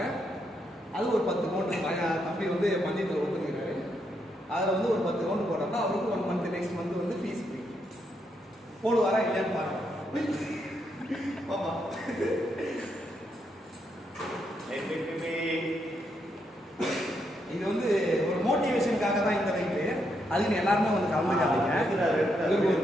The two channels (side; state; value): both; normal; correlation 0.79